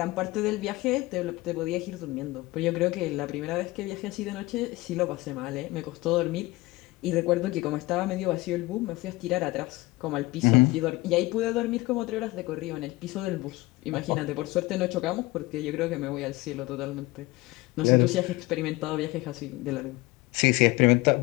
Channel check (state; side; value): quieter; right; 20.5 dB